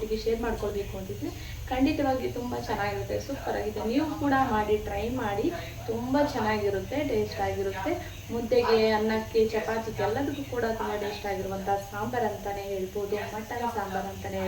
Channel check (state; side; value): identical; both; correlation 1.00